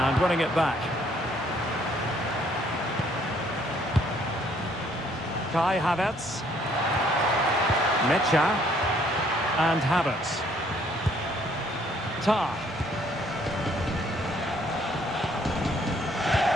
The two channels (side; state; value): both; normal; correlation 0.64